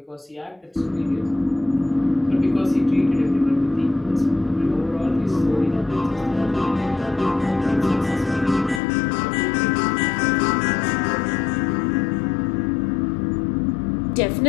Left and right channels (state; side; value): drops out; right; at 8.8 s